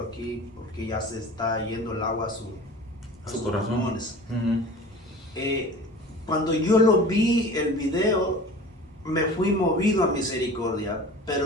porque ya se está yendo el agua a sus pulmones. Cuando yo lo vi, el video, me fui movido a misericordia,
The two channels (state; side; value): normal; both; correlation 0.40